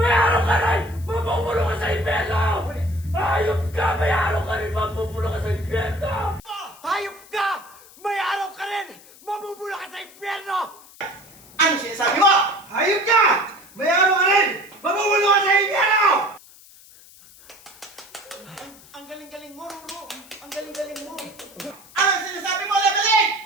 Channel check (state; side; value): noise; left; hiss, 23 dB below the sound